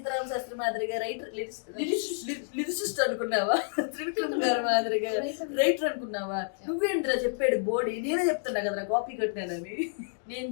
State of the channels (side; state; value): right; silent; digital silence